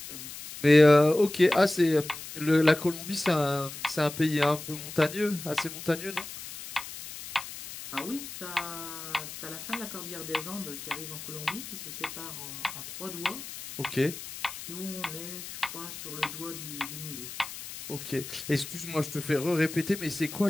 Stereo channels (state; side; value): noise; left; hiss, 11 dB below the sound